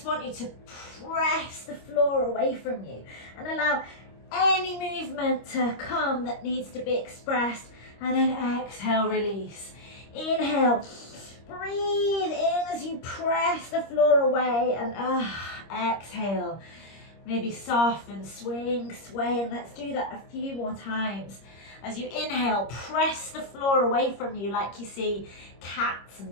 want you to press the floor away from you and allow any movement to come that needs to be expressed, and then exhale, release. Inhale, breathe in as you press the floor away, and exhale. Maybe soften, swing, sway, and let's do that a few more times. As you inhale, press the floor away from you like you see cats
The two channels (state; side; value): late; right; 25 ms